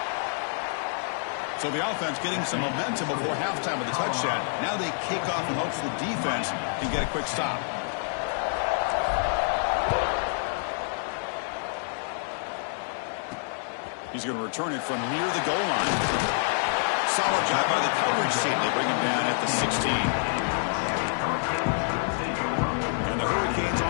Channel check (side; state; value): right; silent; digital silence